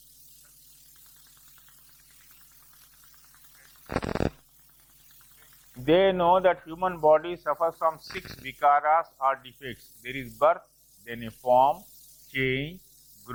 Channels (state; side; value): identical; both; correlation 1.00